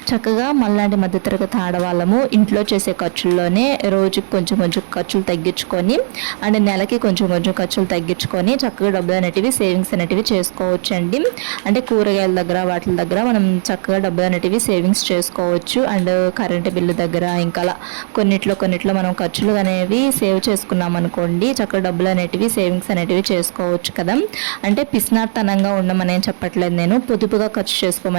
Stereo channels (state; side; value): silent; left; digital silence